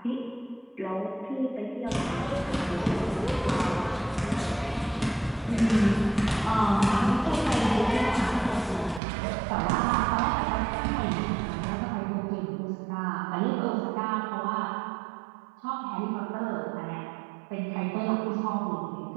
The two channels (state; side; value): drops out; left; at 9.0 s